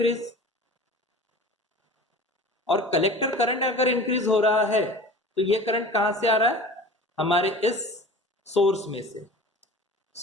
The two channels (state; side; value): normal; both; correlation 0.39